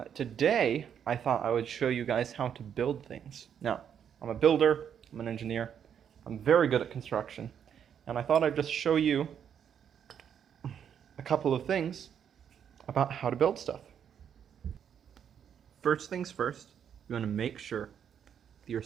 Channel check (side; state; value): left; quieter; 8.4 dB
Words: Today, I thought I would show you guys how to build things. Now, I'm a builder, I'm an engineer, I'm very good at construction, and I thought I'd just show you a couple of things about how to build stuff. First things first, you want to make sure that you're